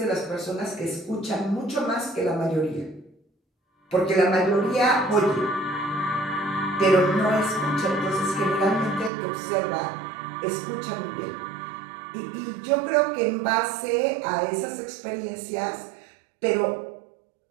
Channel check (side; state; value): left; drops out; at 9.1 s